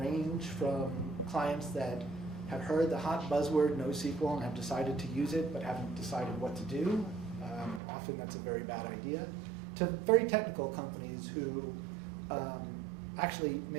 from clients that have heard the hot buzzword NoSQL and have decided to use it but haven't decided what to do. Often that's a very bad idea. To very technical companies who actually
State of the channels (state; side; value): drops out; left; at 7.8 s